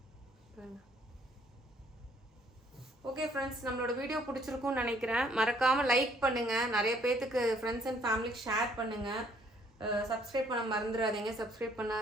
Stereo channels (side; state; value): both; normal; correlation 0.63